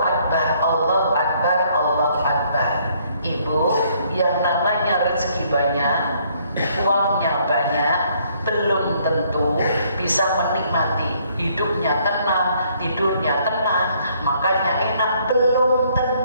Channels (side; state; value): both; inverted; correlation -0.66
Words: Allahu Akbar, Allahu Akbar. Ibu, yang namanya rezeki banyak, uangnya banyak, belum tentu bisa menikmati hidupnya tenang, tidurnya tenang, makannya enak, belum